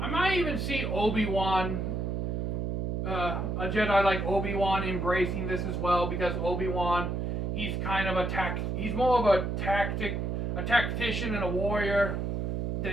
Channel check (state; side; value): noise; right; hum, 1 dB below the sound